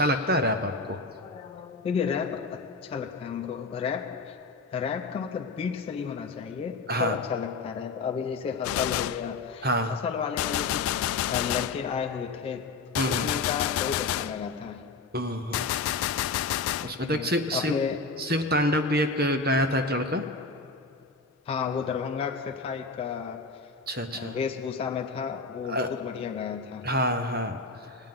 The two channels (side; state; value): right; quieter; 3.6 dB